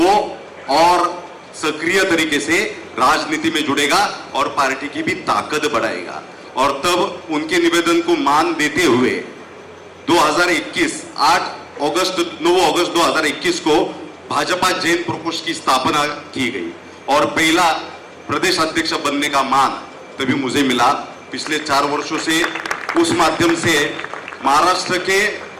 और सक्रिय तरीके से राजनीति में जुड़ेगा और पार्टी की भी ताकत बढ़ाएगा। और तब उनके निवेदन को मान देते हुए 2021 9 अगस्त 2021 को भाजपा जैन प्रकोष्ठ की स्थापना की गई और पहला प्रदेश अध्यक्ष बनने का मान तभी मुझे मिला। पिछले 4 वर्षों से उस माध्यम से महाराष्ट्र के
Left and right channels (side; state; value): both; identical; correlation 1.00